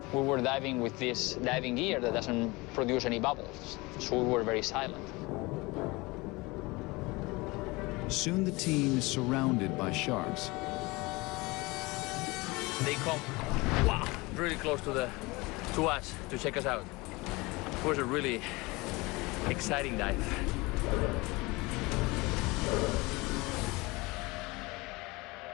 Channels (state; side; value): quieter; right; 23.7 dB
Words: We were diving with this diving gear that doesn't produce any bubbles, so we were very silent. Soon the team is surrounded by sharks. They come, wow, really close to us to check us out. It was a really exciting dive.